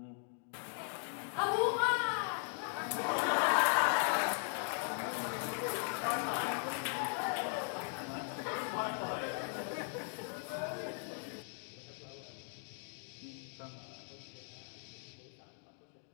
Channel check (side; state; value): right; silent; 52 dB below the other